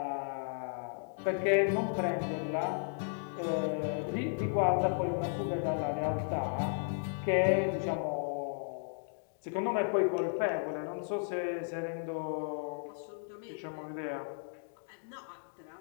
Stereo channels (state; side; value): silent; right; digital silence